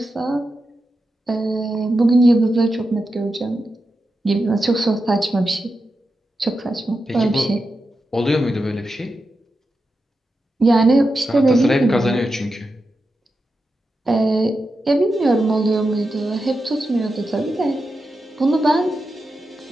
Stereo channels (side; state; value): both; normal; correlation 0.89